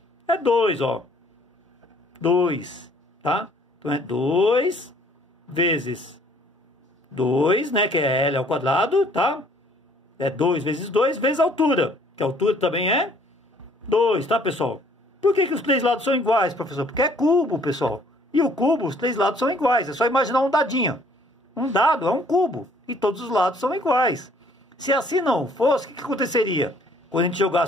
É 2, ó. 2, tá? Então é 2 vezes 2, né? Que é L ao quadrado, tá? É 2 vezes a altura. Que a altura também é 2, tá, pessoal? Por que os 3 lados são iguais, professor? Porque é cubo, pessoal. E o cubo, os 3 lados são iguais. É só imaginar um dadinho. Um dado é um cubo. E todos os lados são iguais. Se assim não fosse, o que aconteceria? Quando a gente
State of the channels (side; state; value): both; normal; correlation 0.60